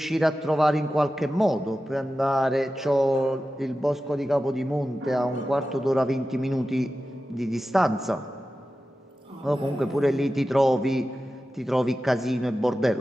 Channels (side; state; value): both; normal; correlation 0.93